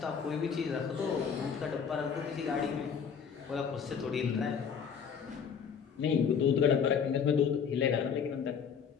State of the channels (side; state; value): right; quieter; 6.9 dB